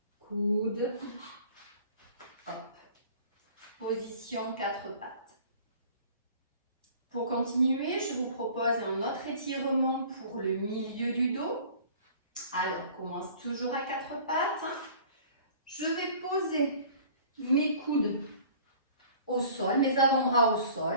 coude, hop. Position quatre pattes. Pour continuer, je vous propose un autre étirement pour le milieu du dos. Alors, on commence toujours à quatre pattes. Je vais poser mes coudes au sol, mes avant-bras au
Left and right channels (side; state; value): both; inverted; correlation -0.48